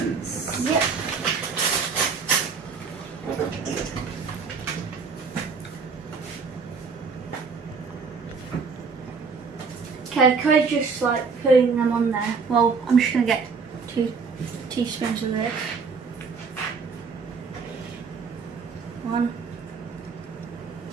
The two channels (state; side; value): quieter; left; 5.2 dB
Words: Yep. Okay, Cody's just like putting them on there. Well, I'm just gonna get 2 teaspoons of this. 1,